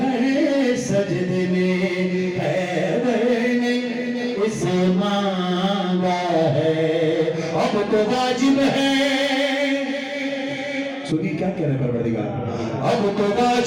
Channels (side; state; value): both; identical; correlation 1.00